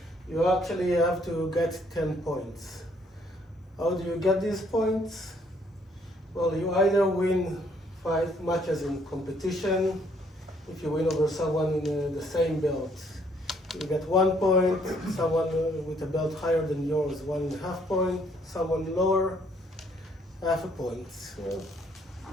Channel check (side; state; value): both; normal; correlation 0.66